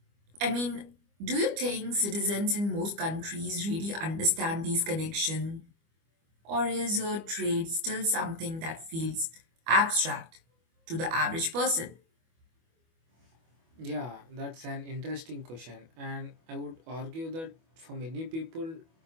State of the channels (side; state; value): left; late; 25 ms